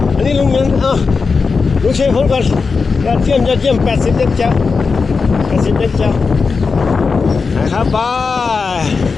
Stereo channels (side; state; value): right; quieter; 4.8 dB